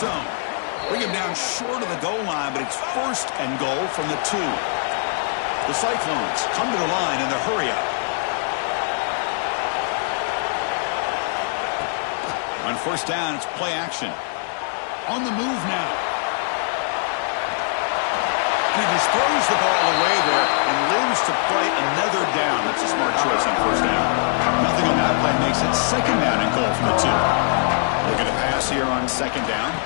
Bring him down short of the goal line, but it's first and goal from the 2. The Cyclones come to the line in the hurry-up. On first down, it's play action. On the move now. And he just throws the ball away there and lives to play another down. That's a smart choice on first down. Nothing on that play makes it second down and goal from the 2. Looking to pass here on second down.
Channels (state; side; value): silent; right; digital silence